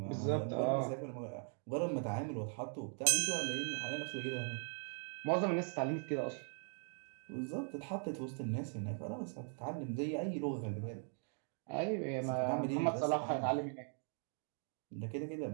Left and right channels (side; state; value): left; silent; 51 dB below the other